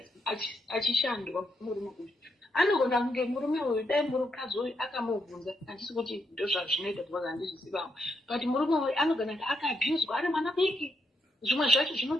achishandwa murume uyu anogona kunge murume uyu dai murukadzi uyu akamubvunza handisi kuti ndo zvazvinoita because handizvisivawo but murume uyu anogona kuti akaabhuzwa ari mwana biki zvimwe zvacho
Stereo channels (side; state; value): both; normal; correlation 0.78